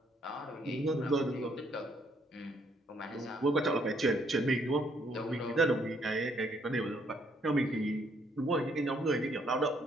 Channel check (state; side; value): normal; both; correlation 0.69